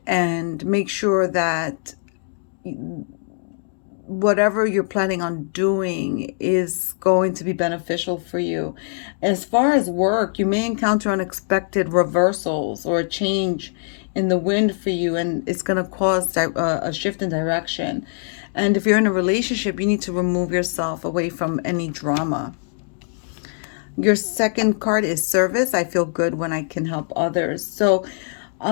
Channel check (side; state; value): right; silent; digital silence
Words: and make sure that whatever you're planning on doing is going to be beneficial for you. As far as work, you may encounter unexpected reversals or a change in the wind for you, and it's going to cause a shift in direction. And if you're in a relationship, you need to remove yourself away from any drama. Your second card is service. I feel good when I can help others. So